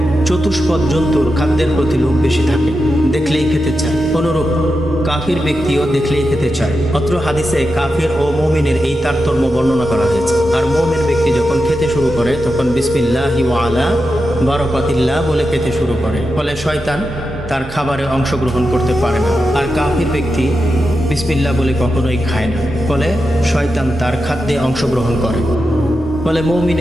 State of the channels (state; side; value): normal; both; correlation 0.89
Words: চতুষ্পদ জন্তুর খাদ্যের প্রতি লোভ বেশি থাকে, দেখলেই খেতে চায়। অনুরূপ কাফির ব্যক্তিও দেখলেই খেতে চায়। অত্র হাদিসে কাফির ও মুমিনের এই তারতম্য বর্ণনা করা হয়েছে। আর মুমিন ব্যক্তি যখন খেতে শুরু করে তখন বিসমিল্লাহি ওয়া আলা বারাকাতিল্লাহ বলে খেতে শুরু করে, ফলে শয়তান তার খাবারে অংশগ্রহণ করতে পারে না। আর কাফির ব্যক্তি বিসমিল্লাহ বলে কখনোই খায় না, ফলে শয়তান তার খাদ্যে অংশগ্রহণ করে। ফলে